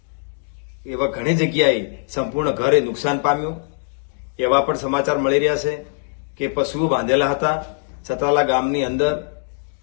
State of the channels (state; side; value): silent; right; digital silence